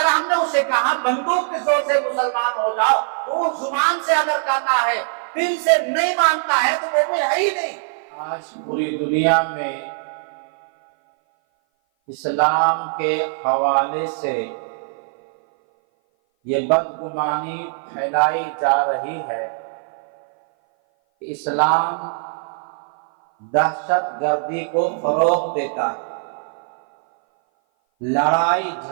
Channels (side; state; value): left; silent; 57 dB below the other